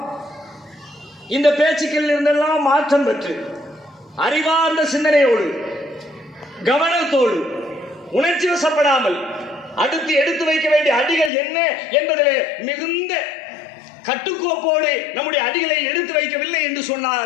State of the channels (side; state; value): right; drops out; at 11.3 s